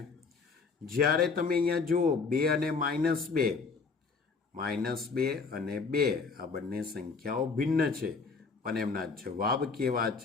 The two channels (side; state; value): right; quieter; 4.7 dB